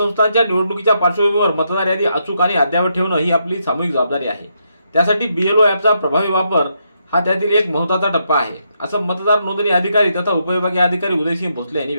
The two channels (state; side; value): inverted; both; correlation -0.79